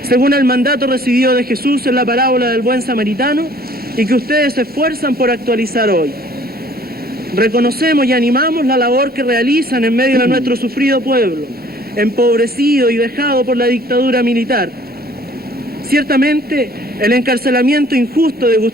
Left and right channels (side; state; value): both; normal; correlation 0.55